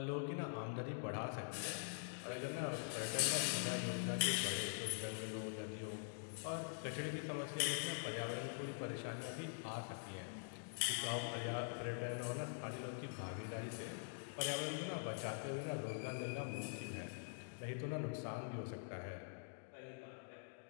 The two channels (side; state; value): right; silent; digital silence